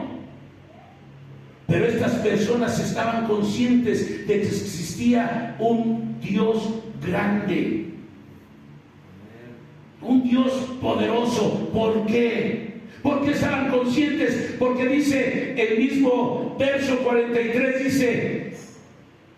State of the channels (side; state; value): both; identical; correlation 1.00